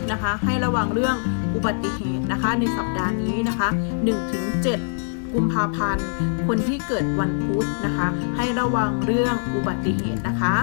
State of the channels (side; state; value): right; silent; digital silence